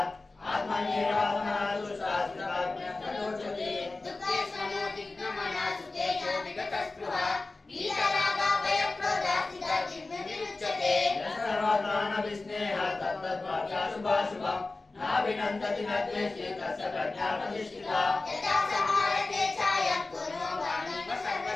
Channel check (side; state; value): right; quieter; 3.4 dB